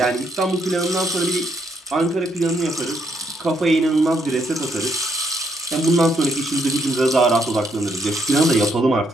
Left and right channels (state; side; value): normal; both; correlation 0.74